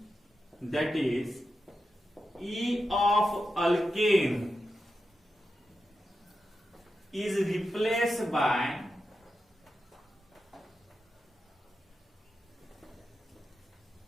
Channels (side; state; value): both; normal; correlation 0.89